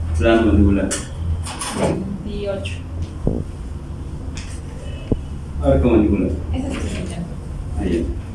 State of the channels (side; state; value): both; identical; correlation 1.00